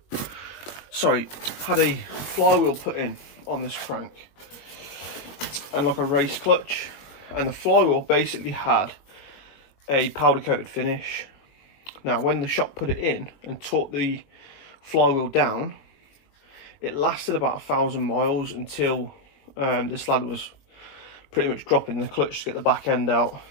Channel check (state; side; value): late; right; 21 ms